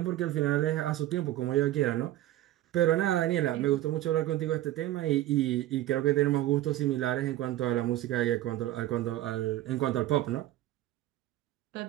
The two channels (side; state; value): left; quieter; 14.7 dB